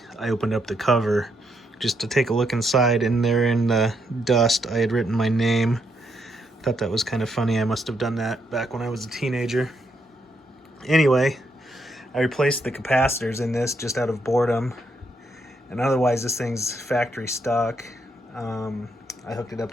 I opened up the cover just to take a look inside, and there in the dust I had written my name. Thought that was kind of funny. I must have done that back when I was a teenager. Anyway, I replaced the capacitors in this just out of boredom, and otherwise this thing's factory stock. I hooked it up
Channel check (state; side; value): normal; both; correlation 0.77